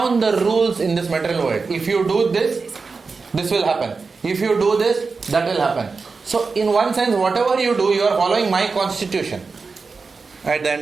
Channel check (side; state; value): left; quieter; 4.5 dB